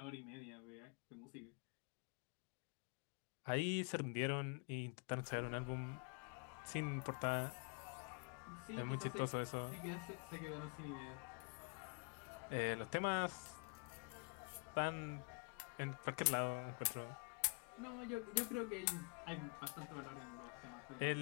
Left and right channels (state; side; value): quieter; right; 36.3 dB